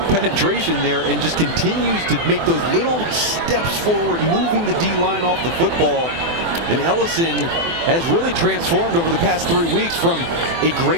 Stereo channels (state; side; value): late; left; 24 ms